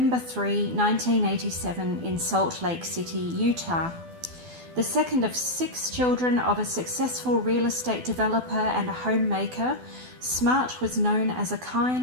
3, 1987 in Salt Lake City, Utah. The second of 6 children of a successful real estate developer and a homemaker, Smart was known as a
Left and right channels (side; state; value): left; late; 12 ms